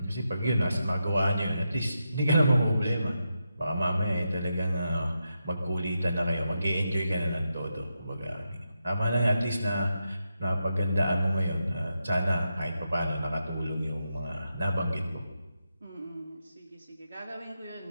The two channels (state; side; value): inverted; both; correlation -0.86